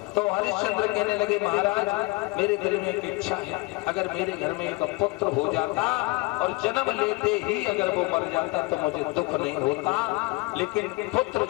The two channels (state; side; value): quieter; right; 25.1 dB